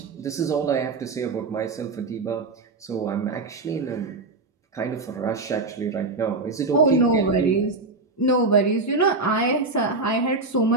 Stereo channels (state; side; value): quieter; left; 3.6 dB